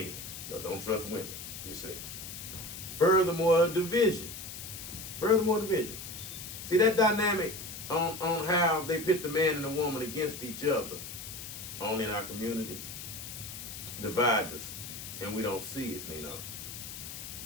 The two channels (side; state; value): left; noise; hiss, 10 dB below the sound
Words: No, don't trust women, you see. Furthermore division. See that dynamic on how they pit the man and the woman against each other only in our community divides us, and we don't see it, we